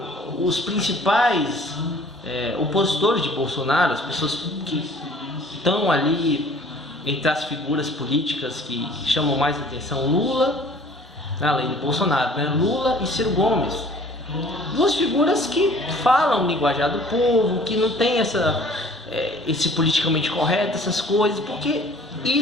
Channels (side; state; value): both; normal; correlation 0.51